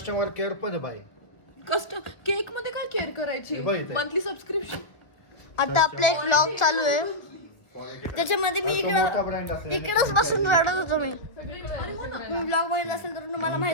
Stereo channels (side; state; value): right; late; 1.2 ms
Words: केअर पण आहे बाई. केक मध्ये काय केअर करायची? बघ इथे. Monthly subscription. आता आपला एक व्लॉग चालू आहे त्याच्यामध्ये मी मोठा brand असल्याने इकडंच बसून रडत होतो. मी ब्लॉग बघितला असेल तर तुम्हाला